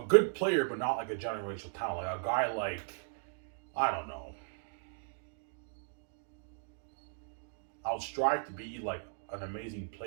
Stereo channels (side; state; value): left; silent; digital silence